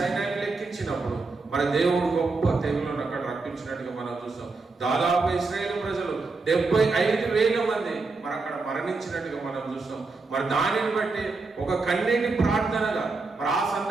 లెక్కించినప్పుడు మరి దేవుడు గొప్ప తెగులను అక్కడ రప్పించినట్టుగా మనం చూస్తాం. దాదాపు ఇశ్రాయేలు ప్రజలు 75,000 మంది మరి అక్కడ మరణించినట్టుగా మనం చూస్తాం. మరి దానిని బట్టి ఒక కన్నీటి ప్రార్థనగా మరి ఆ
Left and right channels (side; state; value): left; quieter; 3.9 dB